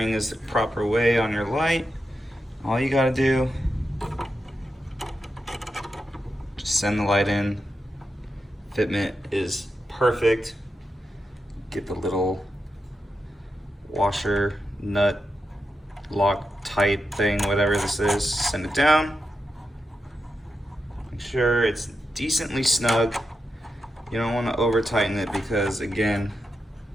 is the proper way on your light. All you gotta do, just send the light in. Fitment is perfect. Get the little washer, nut, lock tight thing, whatever this is, send it down. Make sure it's decently snug. You don't want to over tighten it because again,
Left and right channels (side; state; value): both; normal; correlation 0.88